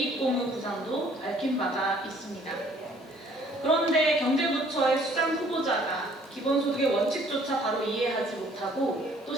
구상도 밝힌 바가 있습니다. 그런데 경제부처의 수장 후보자가 기본소득의 원칙조차 바로 이해하지 못하고 또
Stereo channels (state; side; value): normal; both; correlation 0.59